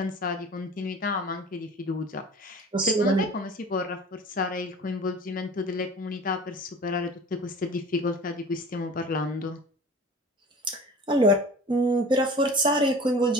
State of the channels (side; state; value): both; normal; correlation 0.41